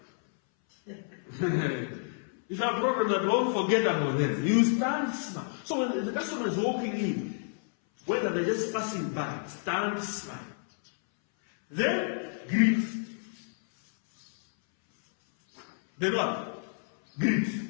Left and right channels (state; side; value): silent; right; 58 dB below the other